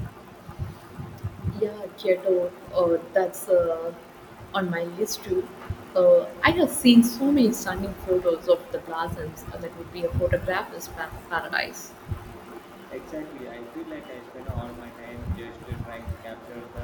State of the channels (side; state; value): both; identical; correlation 1.00